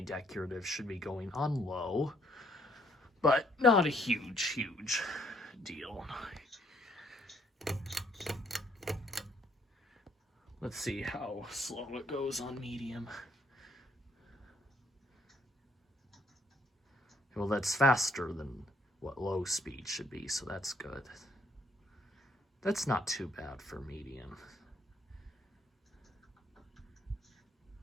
decorative should be going on low, but not a huge deal. Let's see how slow it goes on medium. Well, that's faster than what low speed should be, so that's good. That's not too bad for medium.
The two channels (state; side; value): normal; both; correlation 0.67